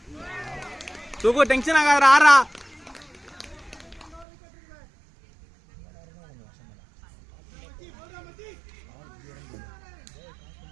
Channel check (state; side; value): drops out; left; at 4.2 s